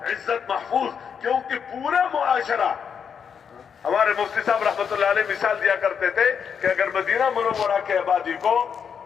عزت محفوظ، کیونکہ پورا معاشرہ، ہمارے مفتی صاحب رحمت اللہ علیہ مثال دیا کرتے تھے کہ اگر مدینہ منورہ کے آبادی کو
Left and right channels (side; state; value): right; quieter; 7.1 dB